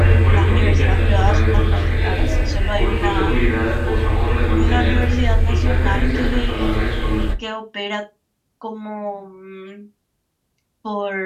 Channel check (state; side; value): identical; both; correlation 1.00